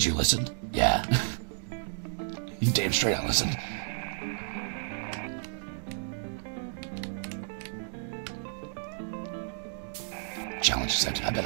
you listened? Yeah. You damn straight I listened. Challenge accepted. I bet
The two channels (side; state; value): left; silent; digital silence